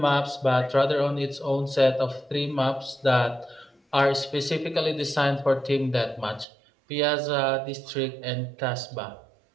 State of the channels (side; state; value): left; drops out; at 6.5 s